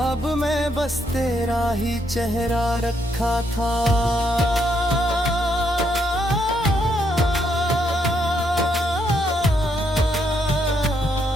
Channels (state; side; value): normal; both; correlation 0.75